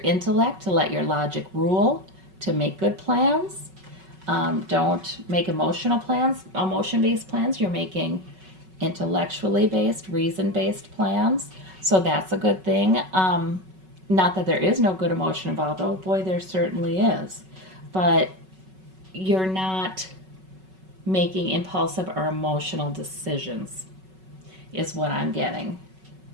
intellect to let your logic rule, to make good plans. Don't make emotional plans, emotion-based plans. You're making intellectually based, reason-based plans. So that's a good thing. Not that there is no good emotion involved. Oh boy, there certainly is. But you're not making impulsive or emotional decisions, is what I'm getting.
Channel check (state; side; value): late; left; 5.3 ms